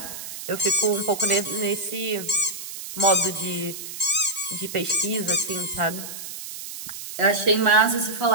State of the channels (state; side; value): noise; right; hiss, 10 dB below the sound